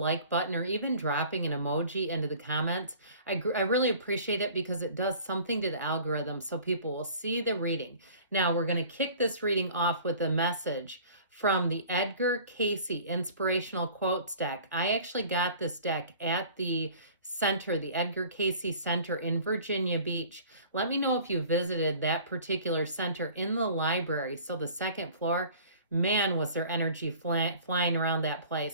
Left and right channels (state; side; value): inverted; both; correlation -0.47